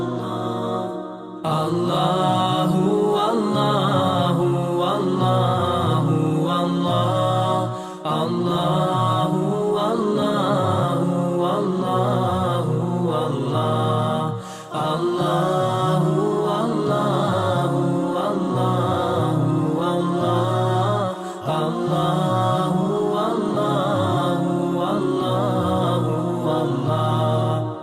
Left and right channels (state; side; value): identical; both; correlation 1.00